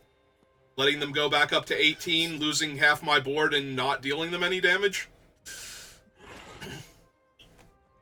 Letting them go back up to 18, losing half my board, and not dealing them any damage?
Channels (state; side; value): identical; both; correlation 1.00